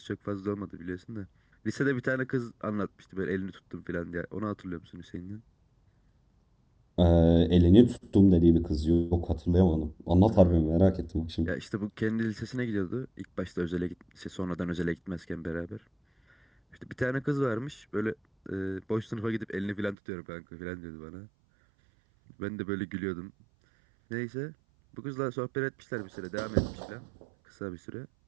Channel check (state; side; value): drops out; left; at 20.0 s